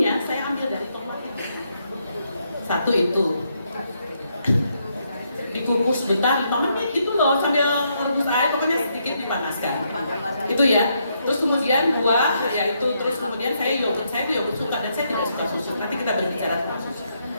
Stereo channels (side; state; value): both; inverted; correlation -0.77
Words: saya ambil dari tomat itu. Satu itu. Dikukus sebentar 5 menit gitu loh sambil merebus air, pokoknya sedikit dipanaskan itu ya. Terus kemudian buah ya itu, terus kemudian saya yogurt suka dan saya tidak suka susu, nanti kita berbicara tentang susu